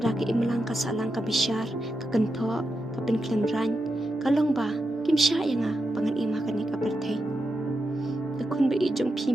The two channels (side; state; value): both; normal; correlation 0.87